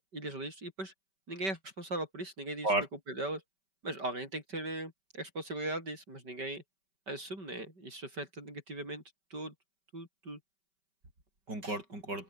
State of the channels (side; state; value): left; late; 5.2 ms